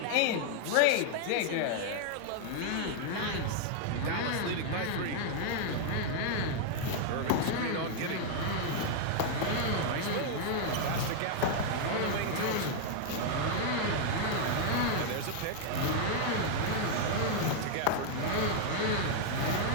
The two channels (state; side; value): different; both; correlation 0.00